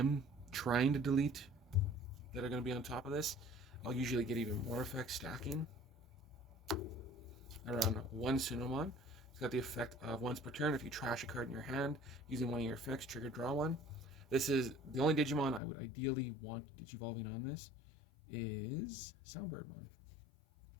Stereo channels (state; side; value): drops out; right; at 15.6 s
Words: trying to delete that are going to be on top of this, I'll usually get even more effects stacking. I run 1 Sunomon. It's got the effect of once per turn, if you trash a card in your hand using one of your effects, trigger draw 1. This is the only Digimon I would ideally want Digivolving on this is Soundbirdmon,